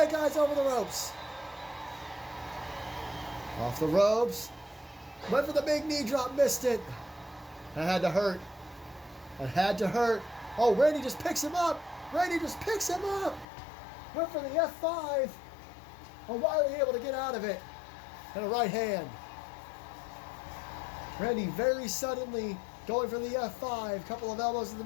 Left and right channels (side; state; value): right; drops out; at 13.5 s